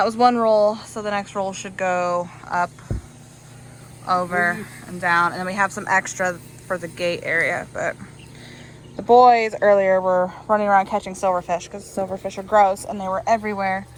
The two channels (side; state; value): both; identical; correlation 1.00